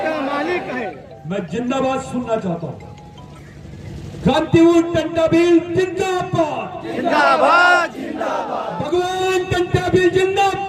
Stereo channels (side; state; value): both; identical; correlation 1.00